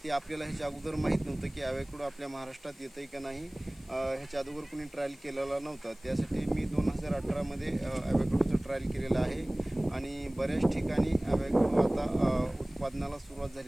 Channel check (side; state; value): left; noise; hiss, 26 dB below the sound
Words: ते आपल्याला ह्याच्या अगोदर माहीत नव्हतं की ॲव्होकॅडो आपल्या महाराष्ट्रात येतं आहे का नाही। ह्याच्या अगोदर कुणी ट्रायल केलेला नव्हता, त्यासाठी मी 2018 मध्ये ॲव्होकॅडोचं ट्रायल केलेलं आहे आणि बऱ्याच ठिकाणी ॲव्होकॅडो आता उत्पादनाला सुरुवात